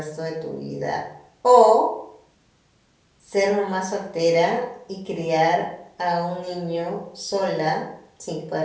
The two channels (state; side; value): identical; both; correlation 1.00